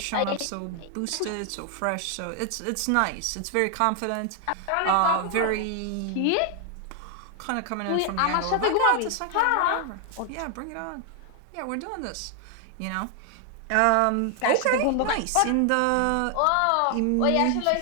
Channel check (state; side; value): different; both; correlation 0.00